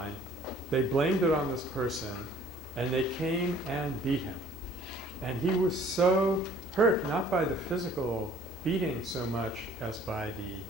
They blamed it on this person, and they came and beat him. And he was so hurt, not by the physical beating so much as by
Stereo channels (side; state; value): both; normal; correlation 0.54